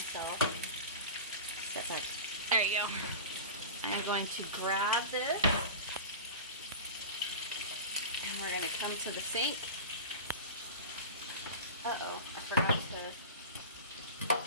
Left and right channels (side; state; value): both; inverted; correlation -0.33